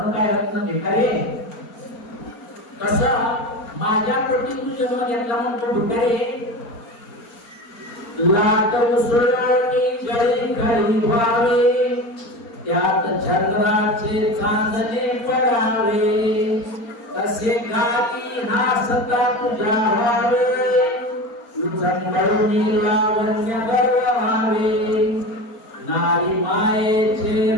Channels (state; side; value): late; right; 4.4 ms